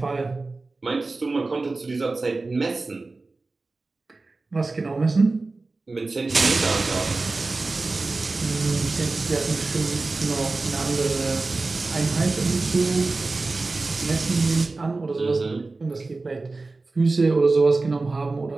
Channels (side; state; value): left; quieter; 3.5 dB